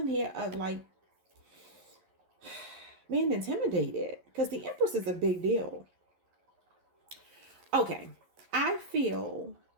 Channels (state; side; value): late; left; 11 ms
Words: here of like being intimidated. Because the Empress is a big deal. Okay. I feel